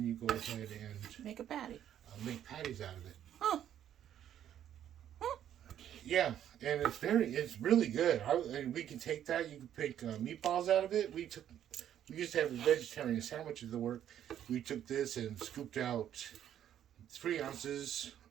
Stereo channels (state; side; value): quieter; left; 10.5 dB